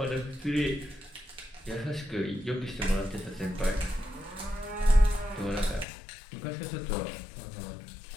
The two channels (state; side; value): drops out; right; at 5.9 s